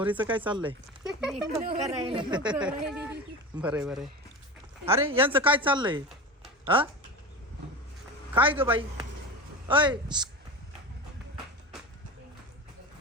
काय चाललंय? बरं बरं. अरे यांचं काय चाललंय? हा काय ग बाई? अय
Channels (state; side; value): normal; both; correlation 0.28